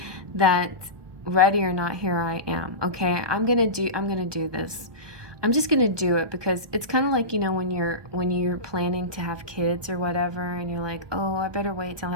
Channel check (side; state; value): left; late; 1.2 ms